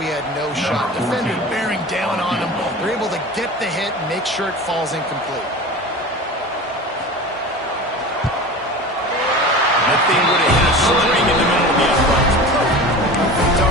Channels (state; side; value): normal; both; correlation 0.34